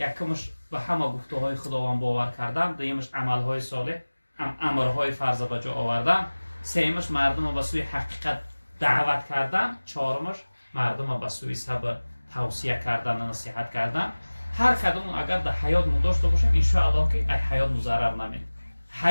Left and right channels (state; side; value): inverted; both; correlation -1.00